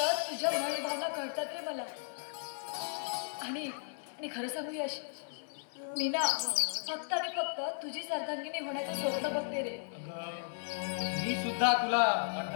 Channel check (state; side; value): silent; right; 54 dB below the other